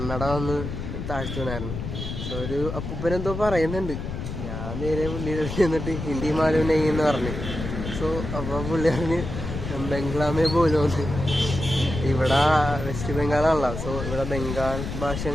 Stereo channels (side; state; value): left; noise; rumble, 6 dB below the sound